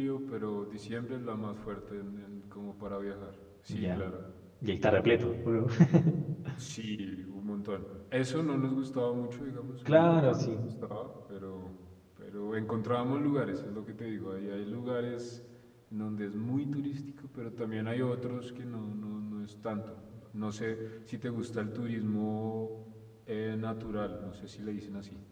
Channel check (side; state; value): both; identical; correlation 1.00